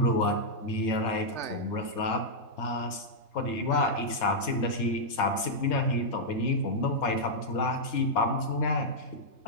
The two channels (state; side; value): late; right; 3.3 ms